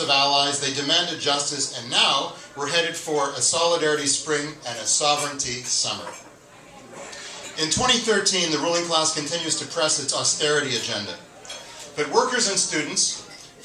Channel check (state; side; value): identical; both; correlation 1.00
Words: allies, they demanded justice, and now we're headed for a solidarity spring and a sovereignty summer. In 2013, the ruling class continues to press its austerity agenda. But workers and students,